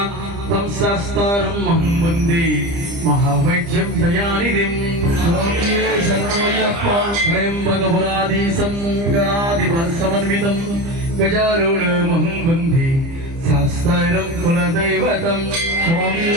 తం శాస్త్రం మహం వందే మహావైద్యం దయానిధిం. త్రయంబకపురాధీశం గణాధిప సమన్వితం గజారూఢమహం వందే శాస్త్రం కులదైవతం.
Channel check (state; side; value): late; left; 30 ms